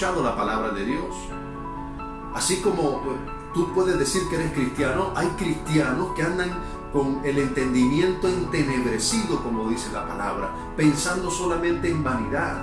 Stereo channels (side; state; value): both; identical; correlation 1.00